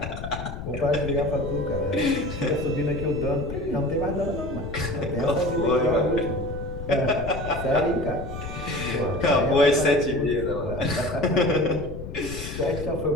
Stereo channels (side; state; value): left; noise; rumble, 8 dB below the sound